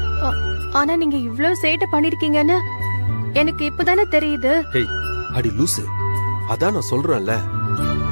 ஆனா நீங்க இவ்ளோ சேட்டை பண்ணிருக்கீங்கன்னு எனக்கு இப்பதானே தெரியுது. ஹேய் அடி லூசு, அதான் நான் சொல்றேன்ல,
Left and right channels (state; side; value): inverted; both; correlation -1.00